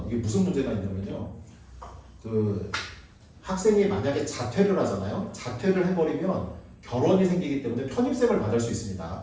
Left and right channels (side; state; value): both; identical; correlation 1.00